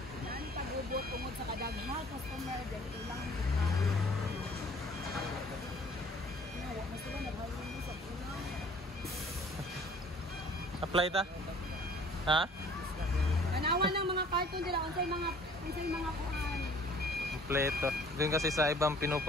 Apply ta? Ha? Tanawan ng mga cartoon nila. Unsay mga kuan. Kompleto. Doon kasi sa ibang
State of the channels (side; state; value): both; normal; correlation 0.53